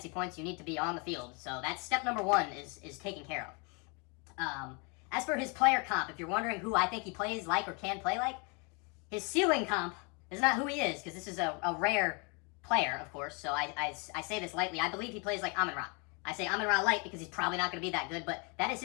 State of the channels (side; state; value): right; quieter; 33.0 dB